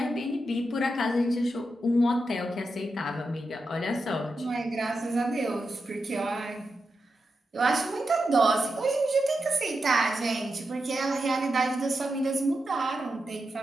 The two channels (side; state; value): both; normal; correlation 0.88